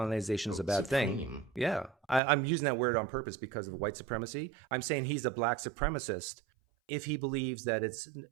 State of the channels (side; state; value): left; drops out; at 2.2 s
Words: is a bad thing. Yeah, I'm using that word on purpose because of white supremacy. I'm saying he's a black supremacist if he believes that it's